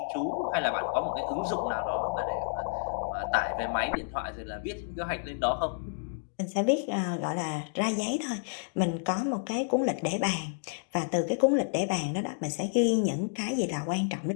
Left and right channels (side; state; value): right; silent; digital silence